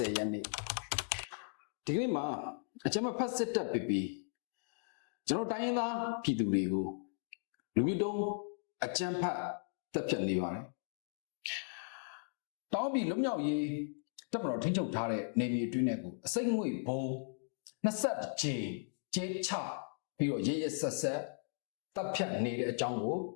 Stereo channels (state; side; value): silent; right; digital silence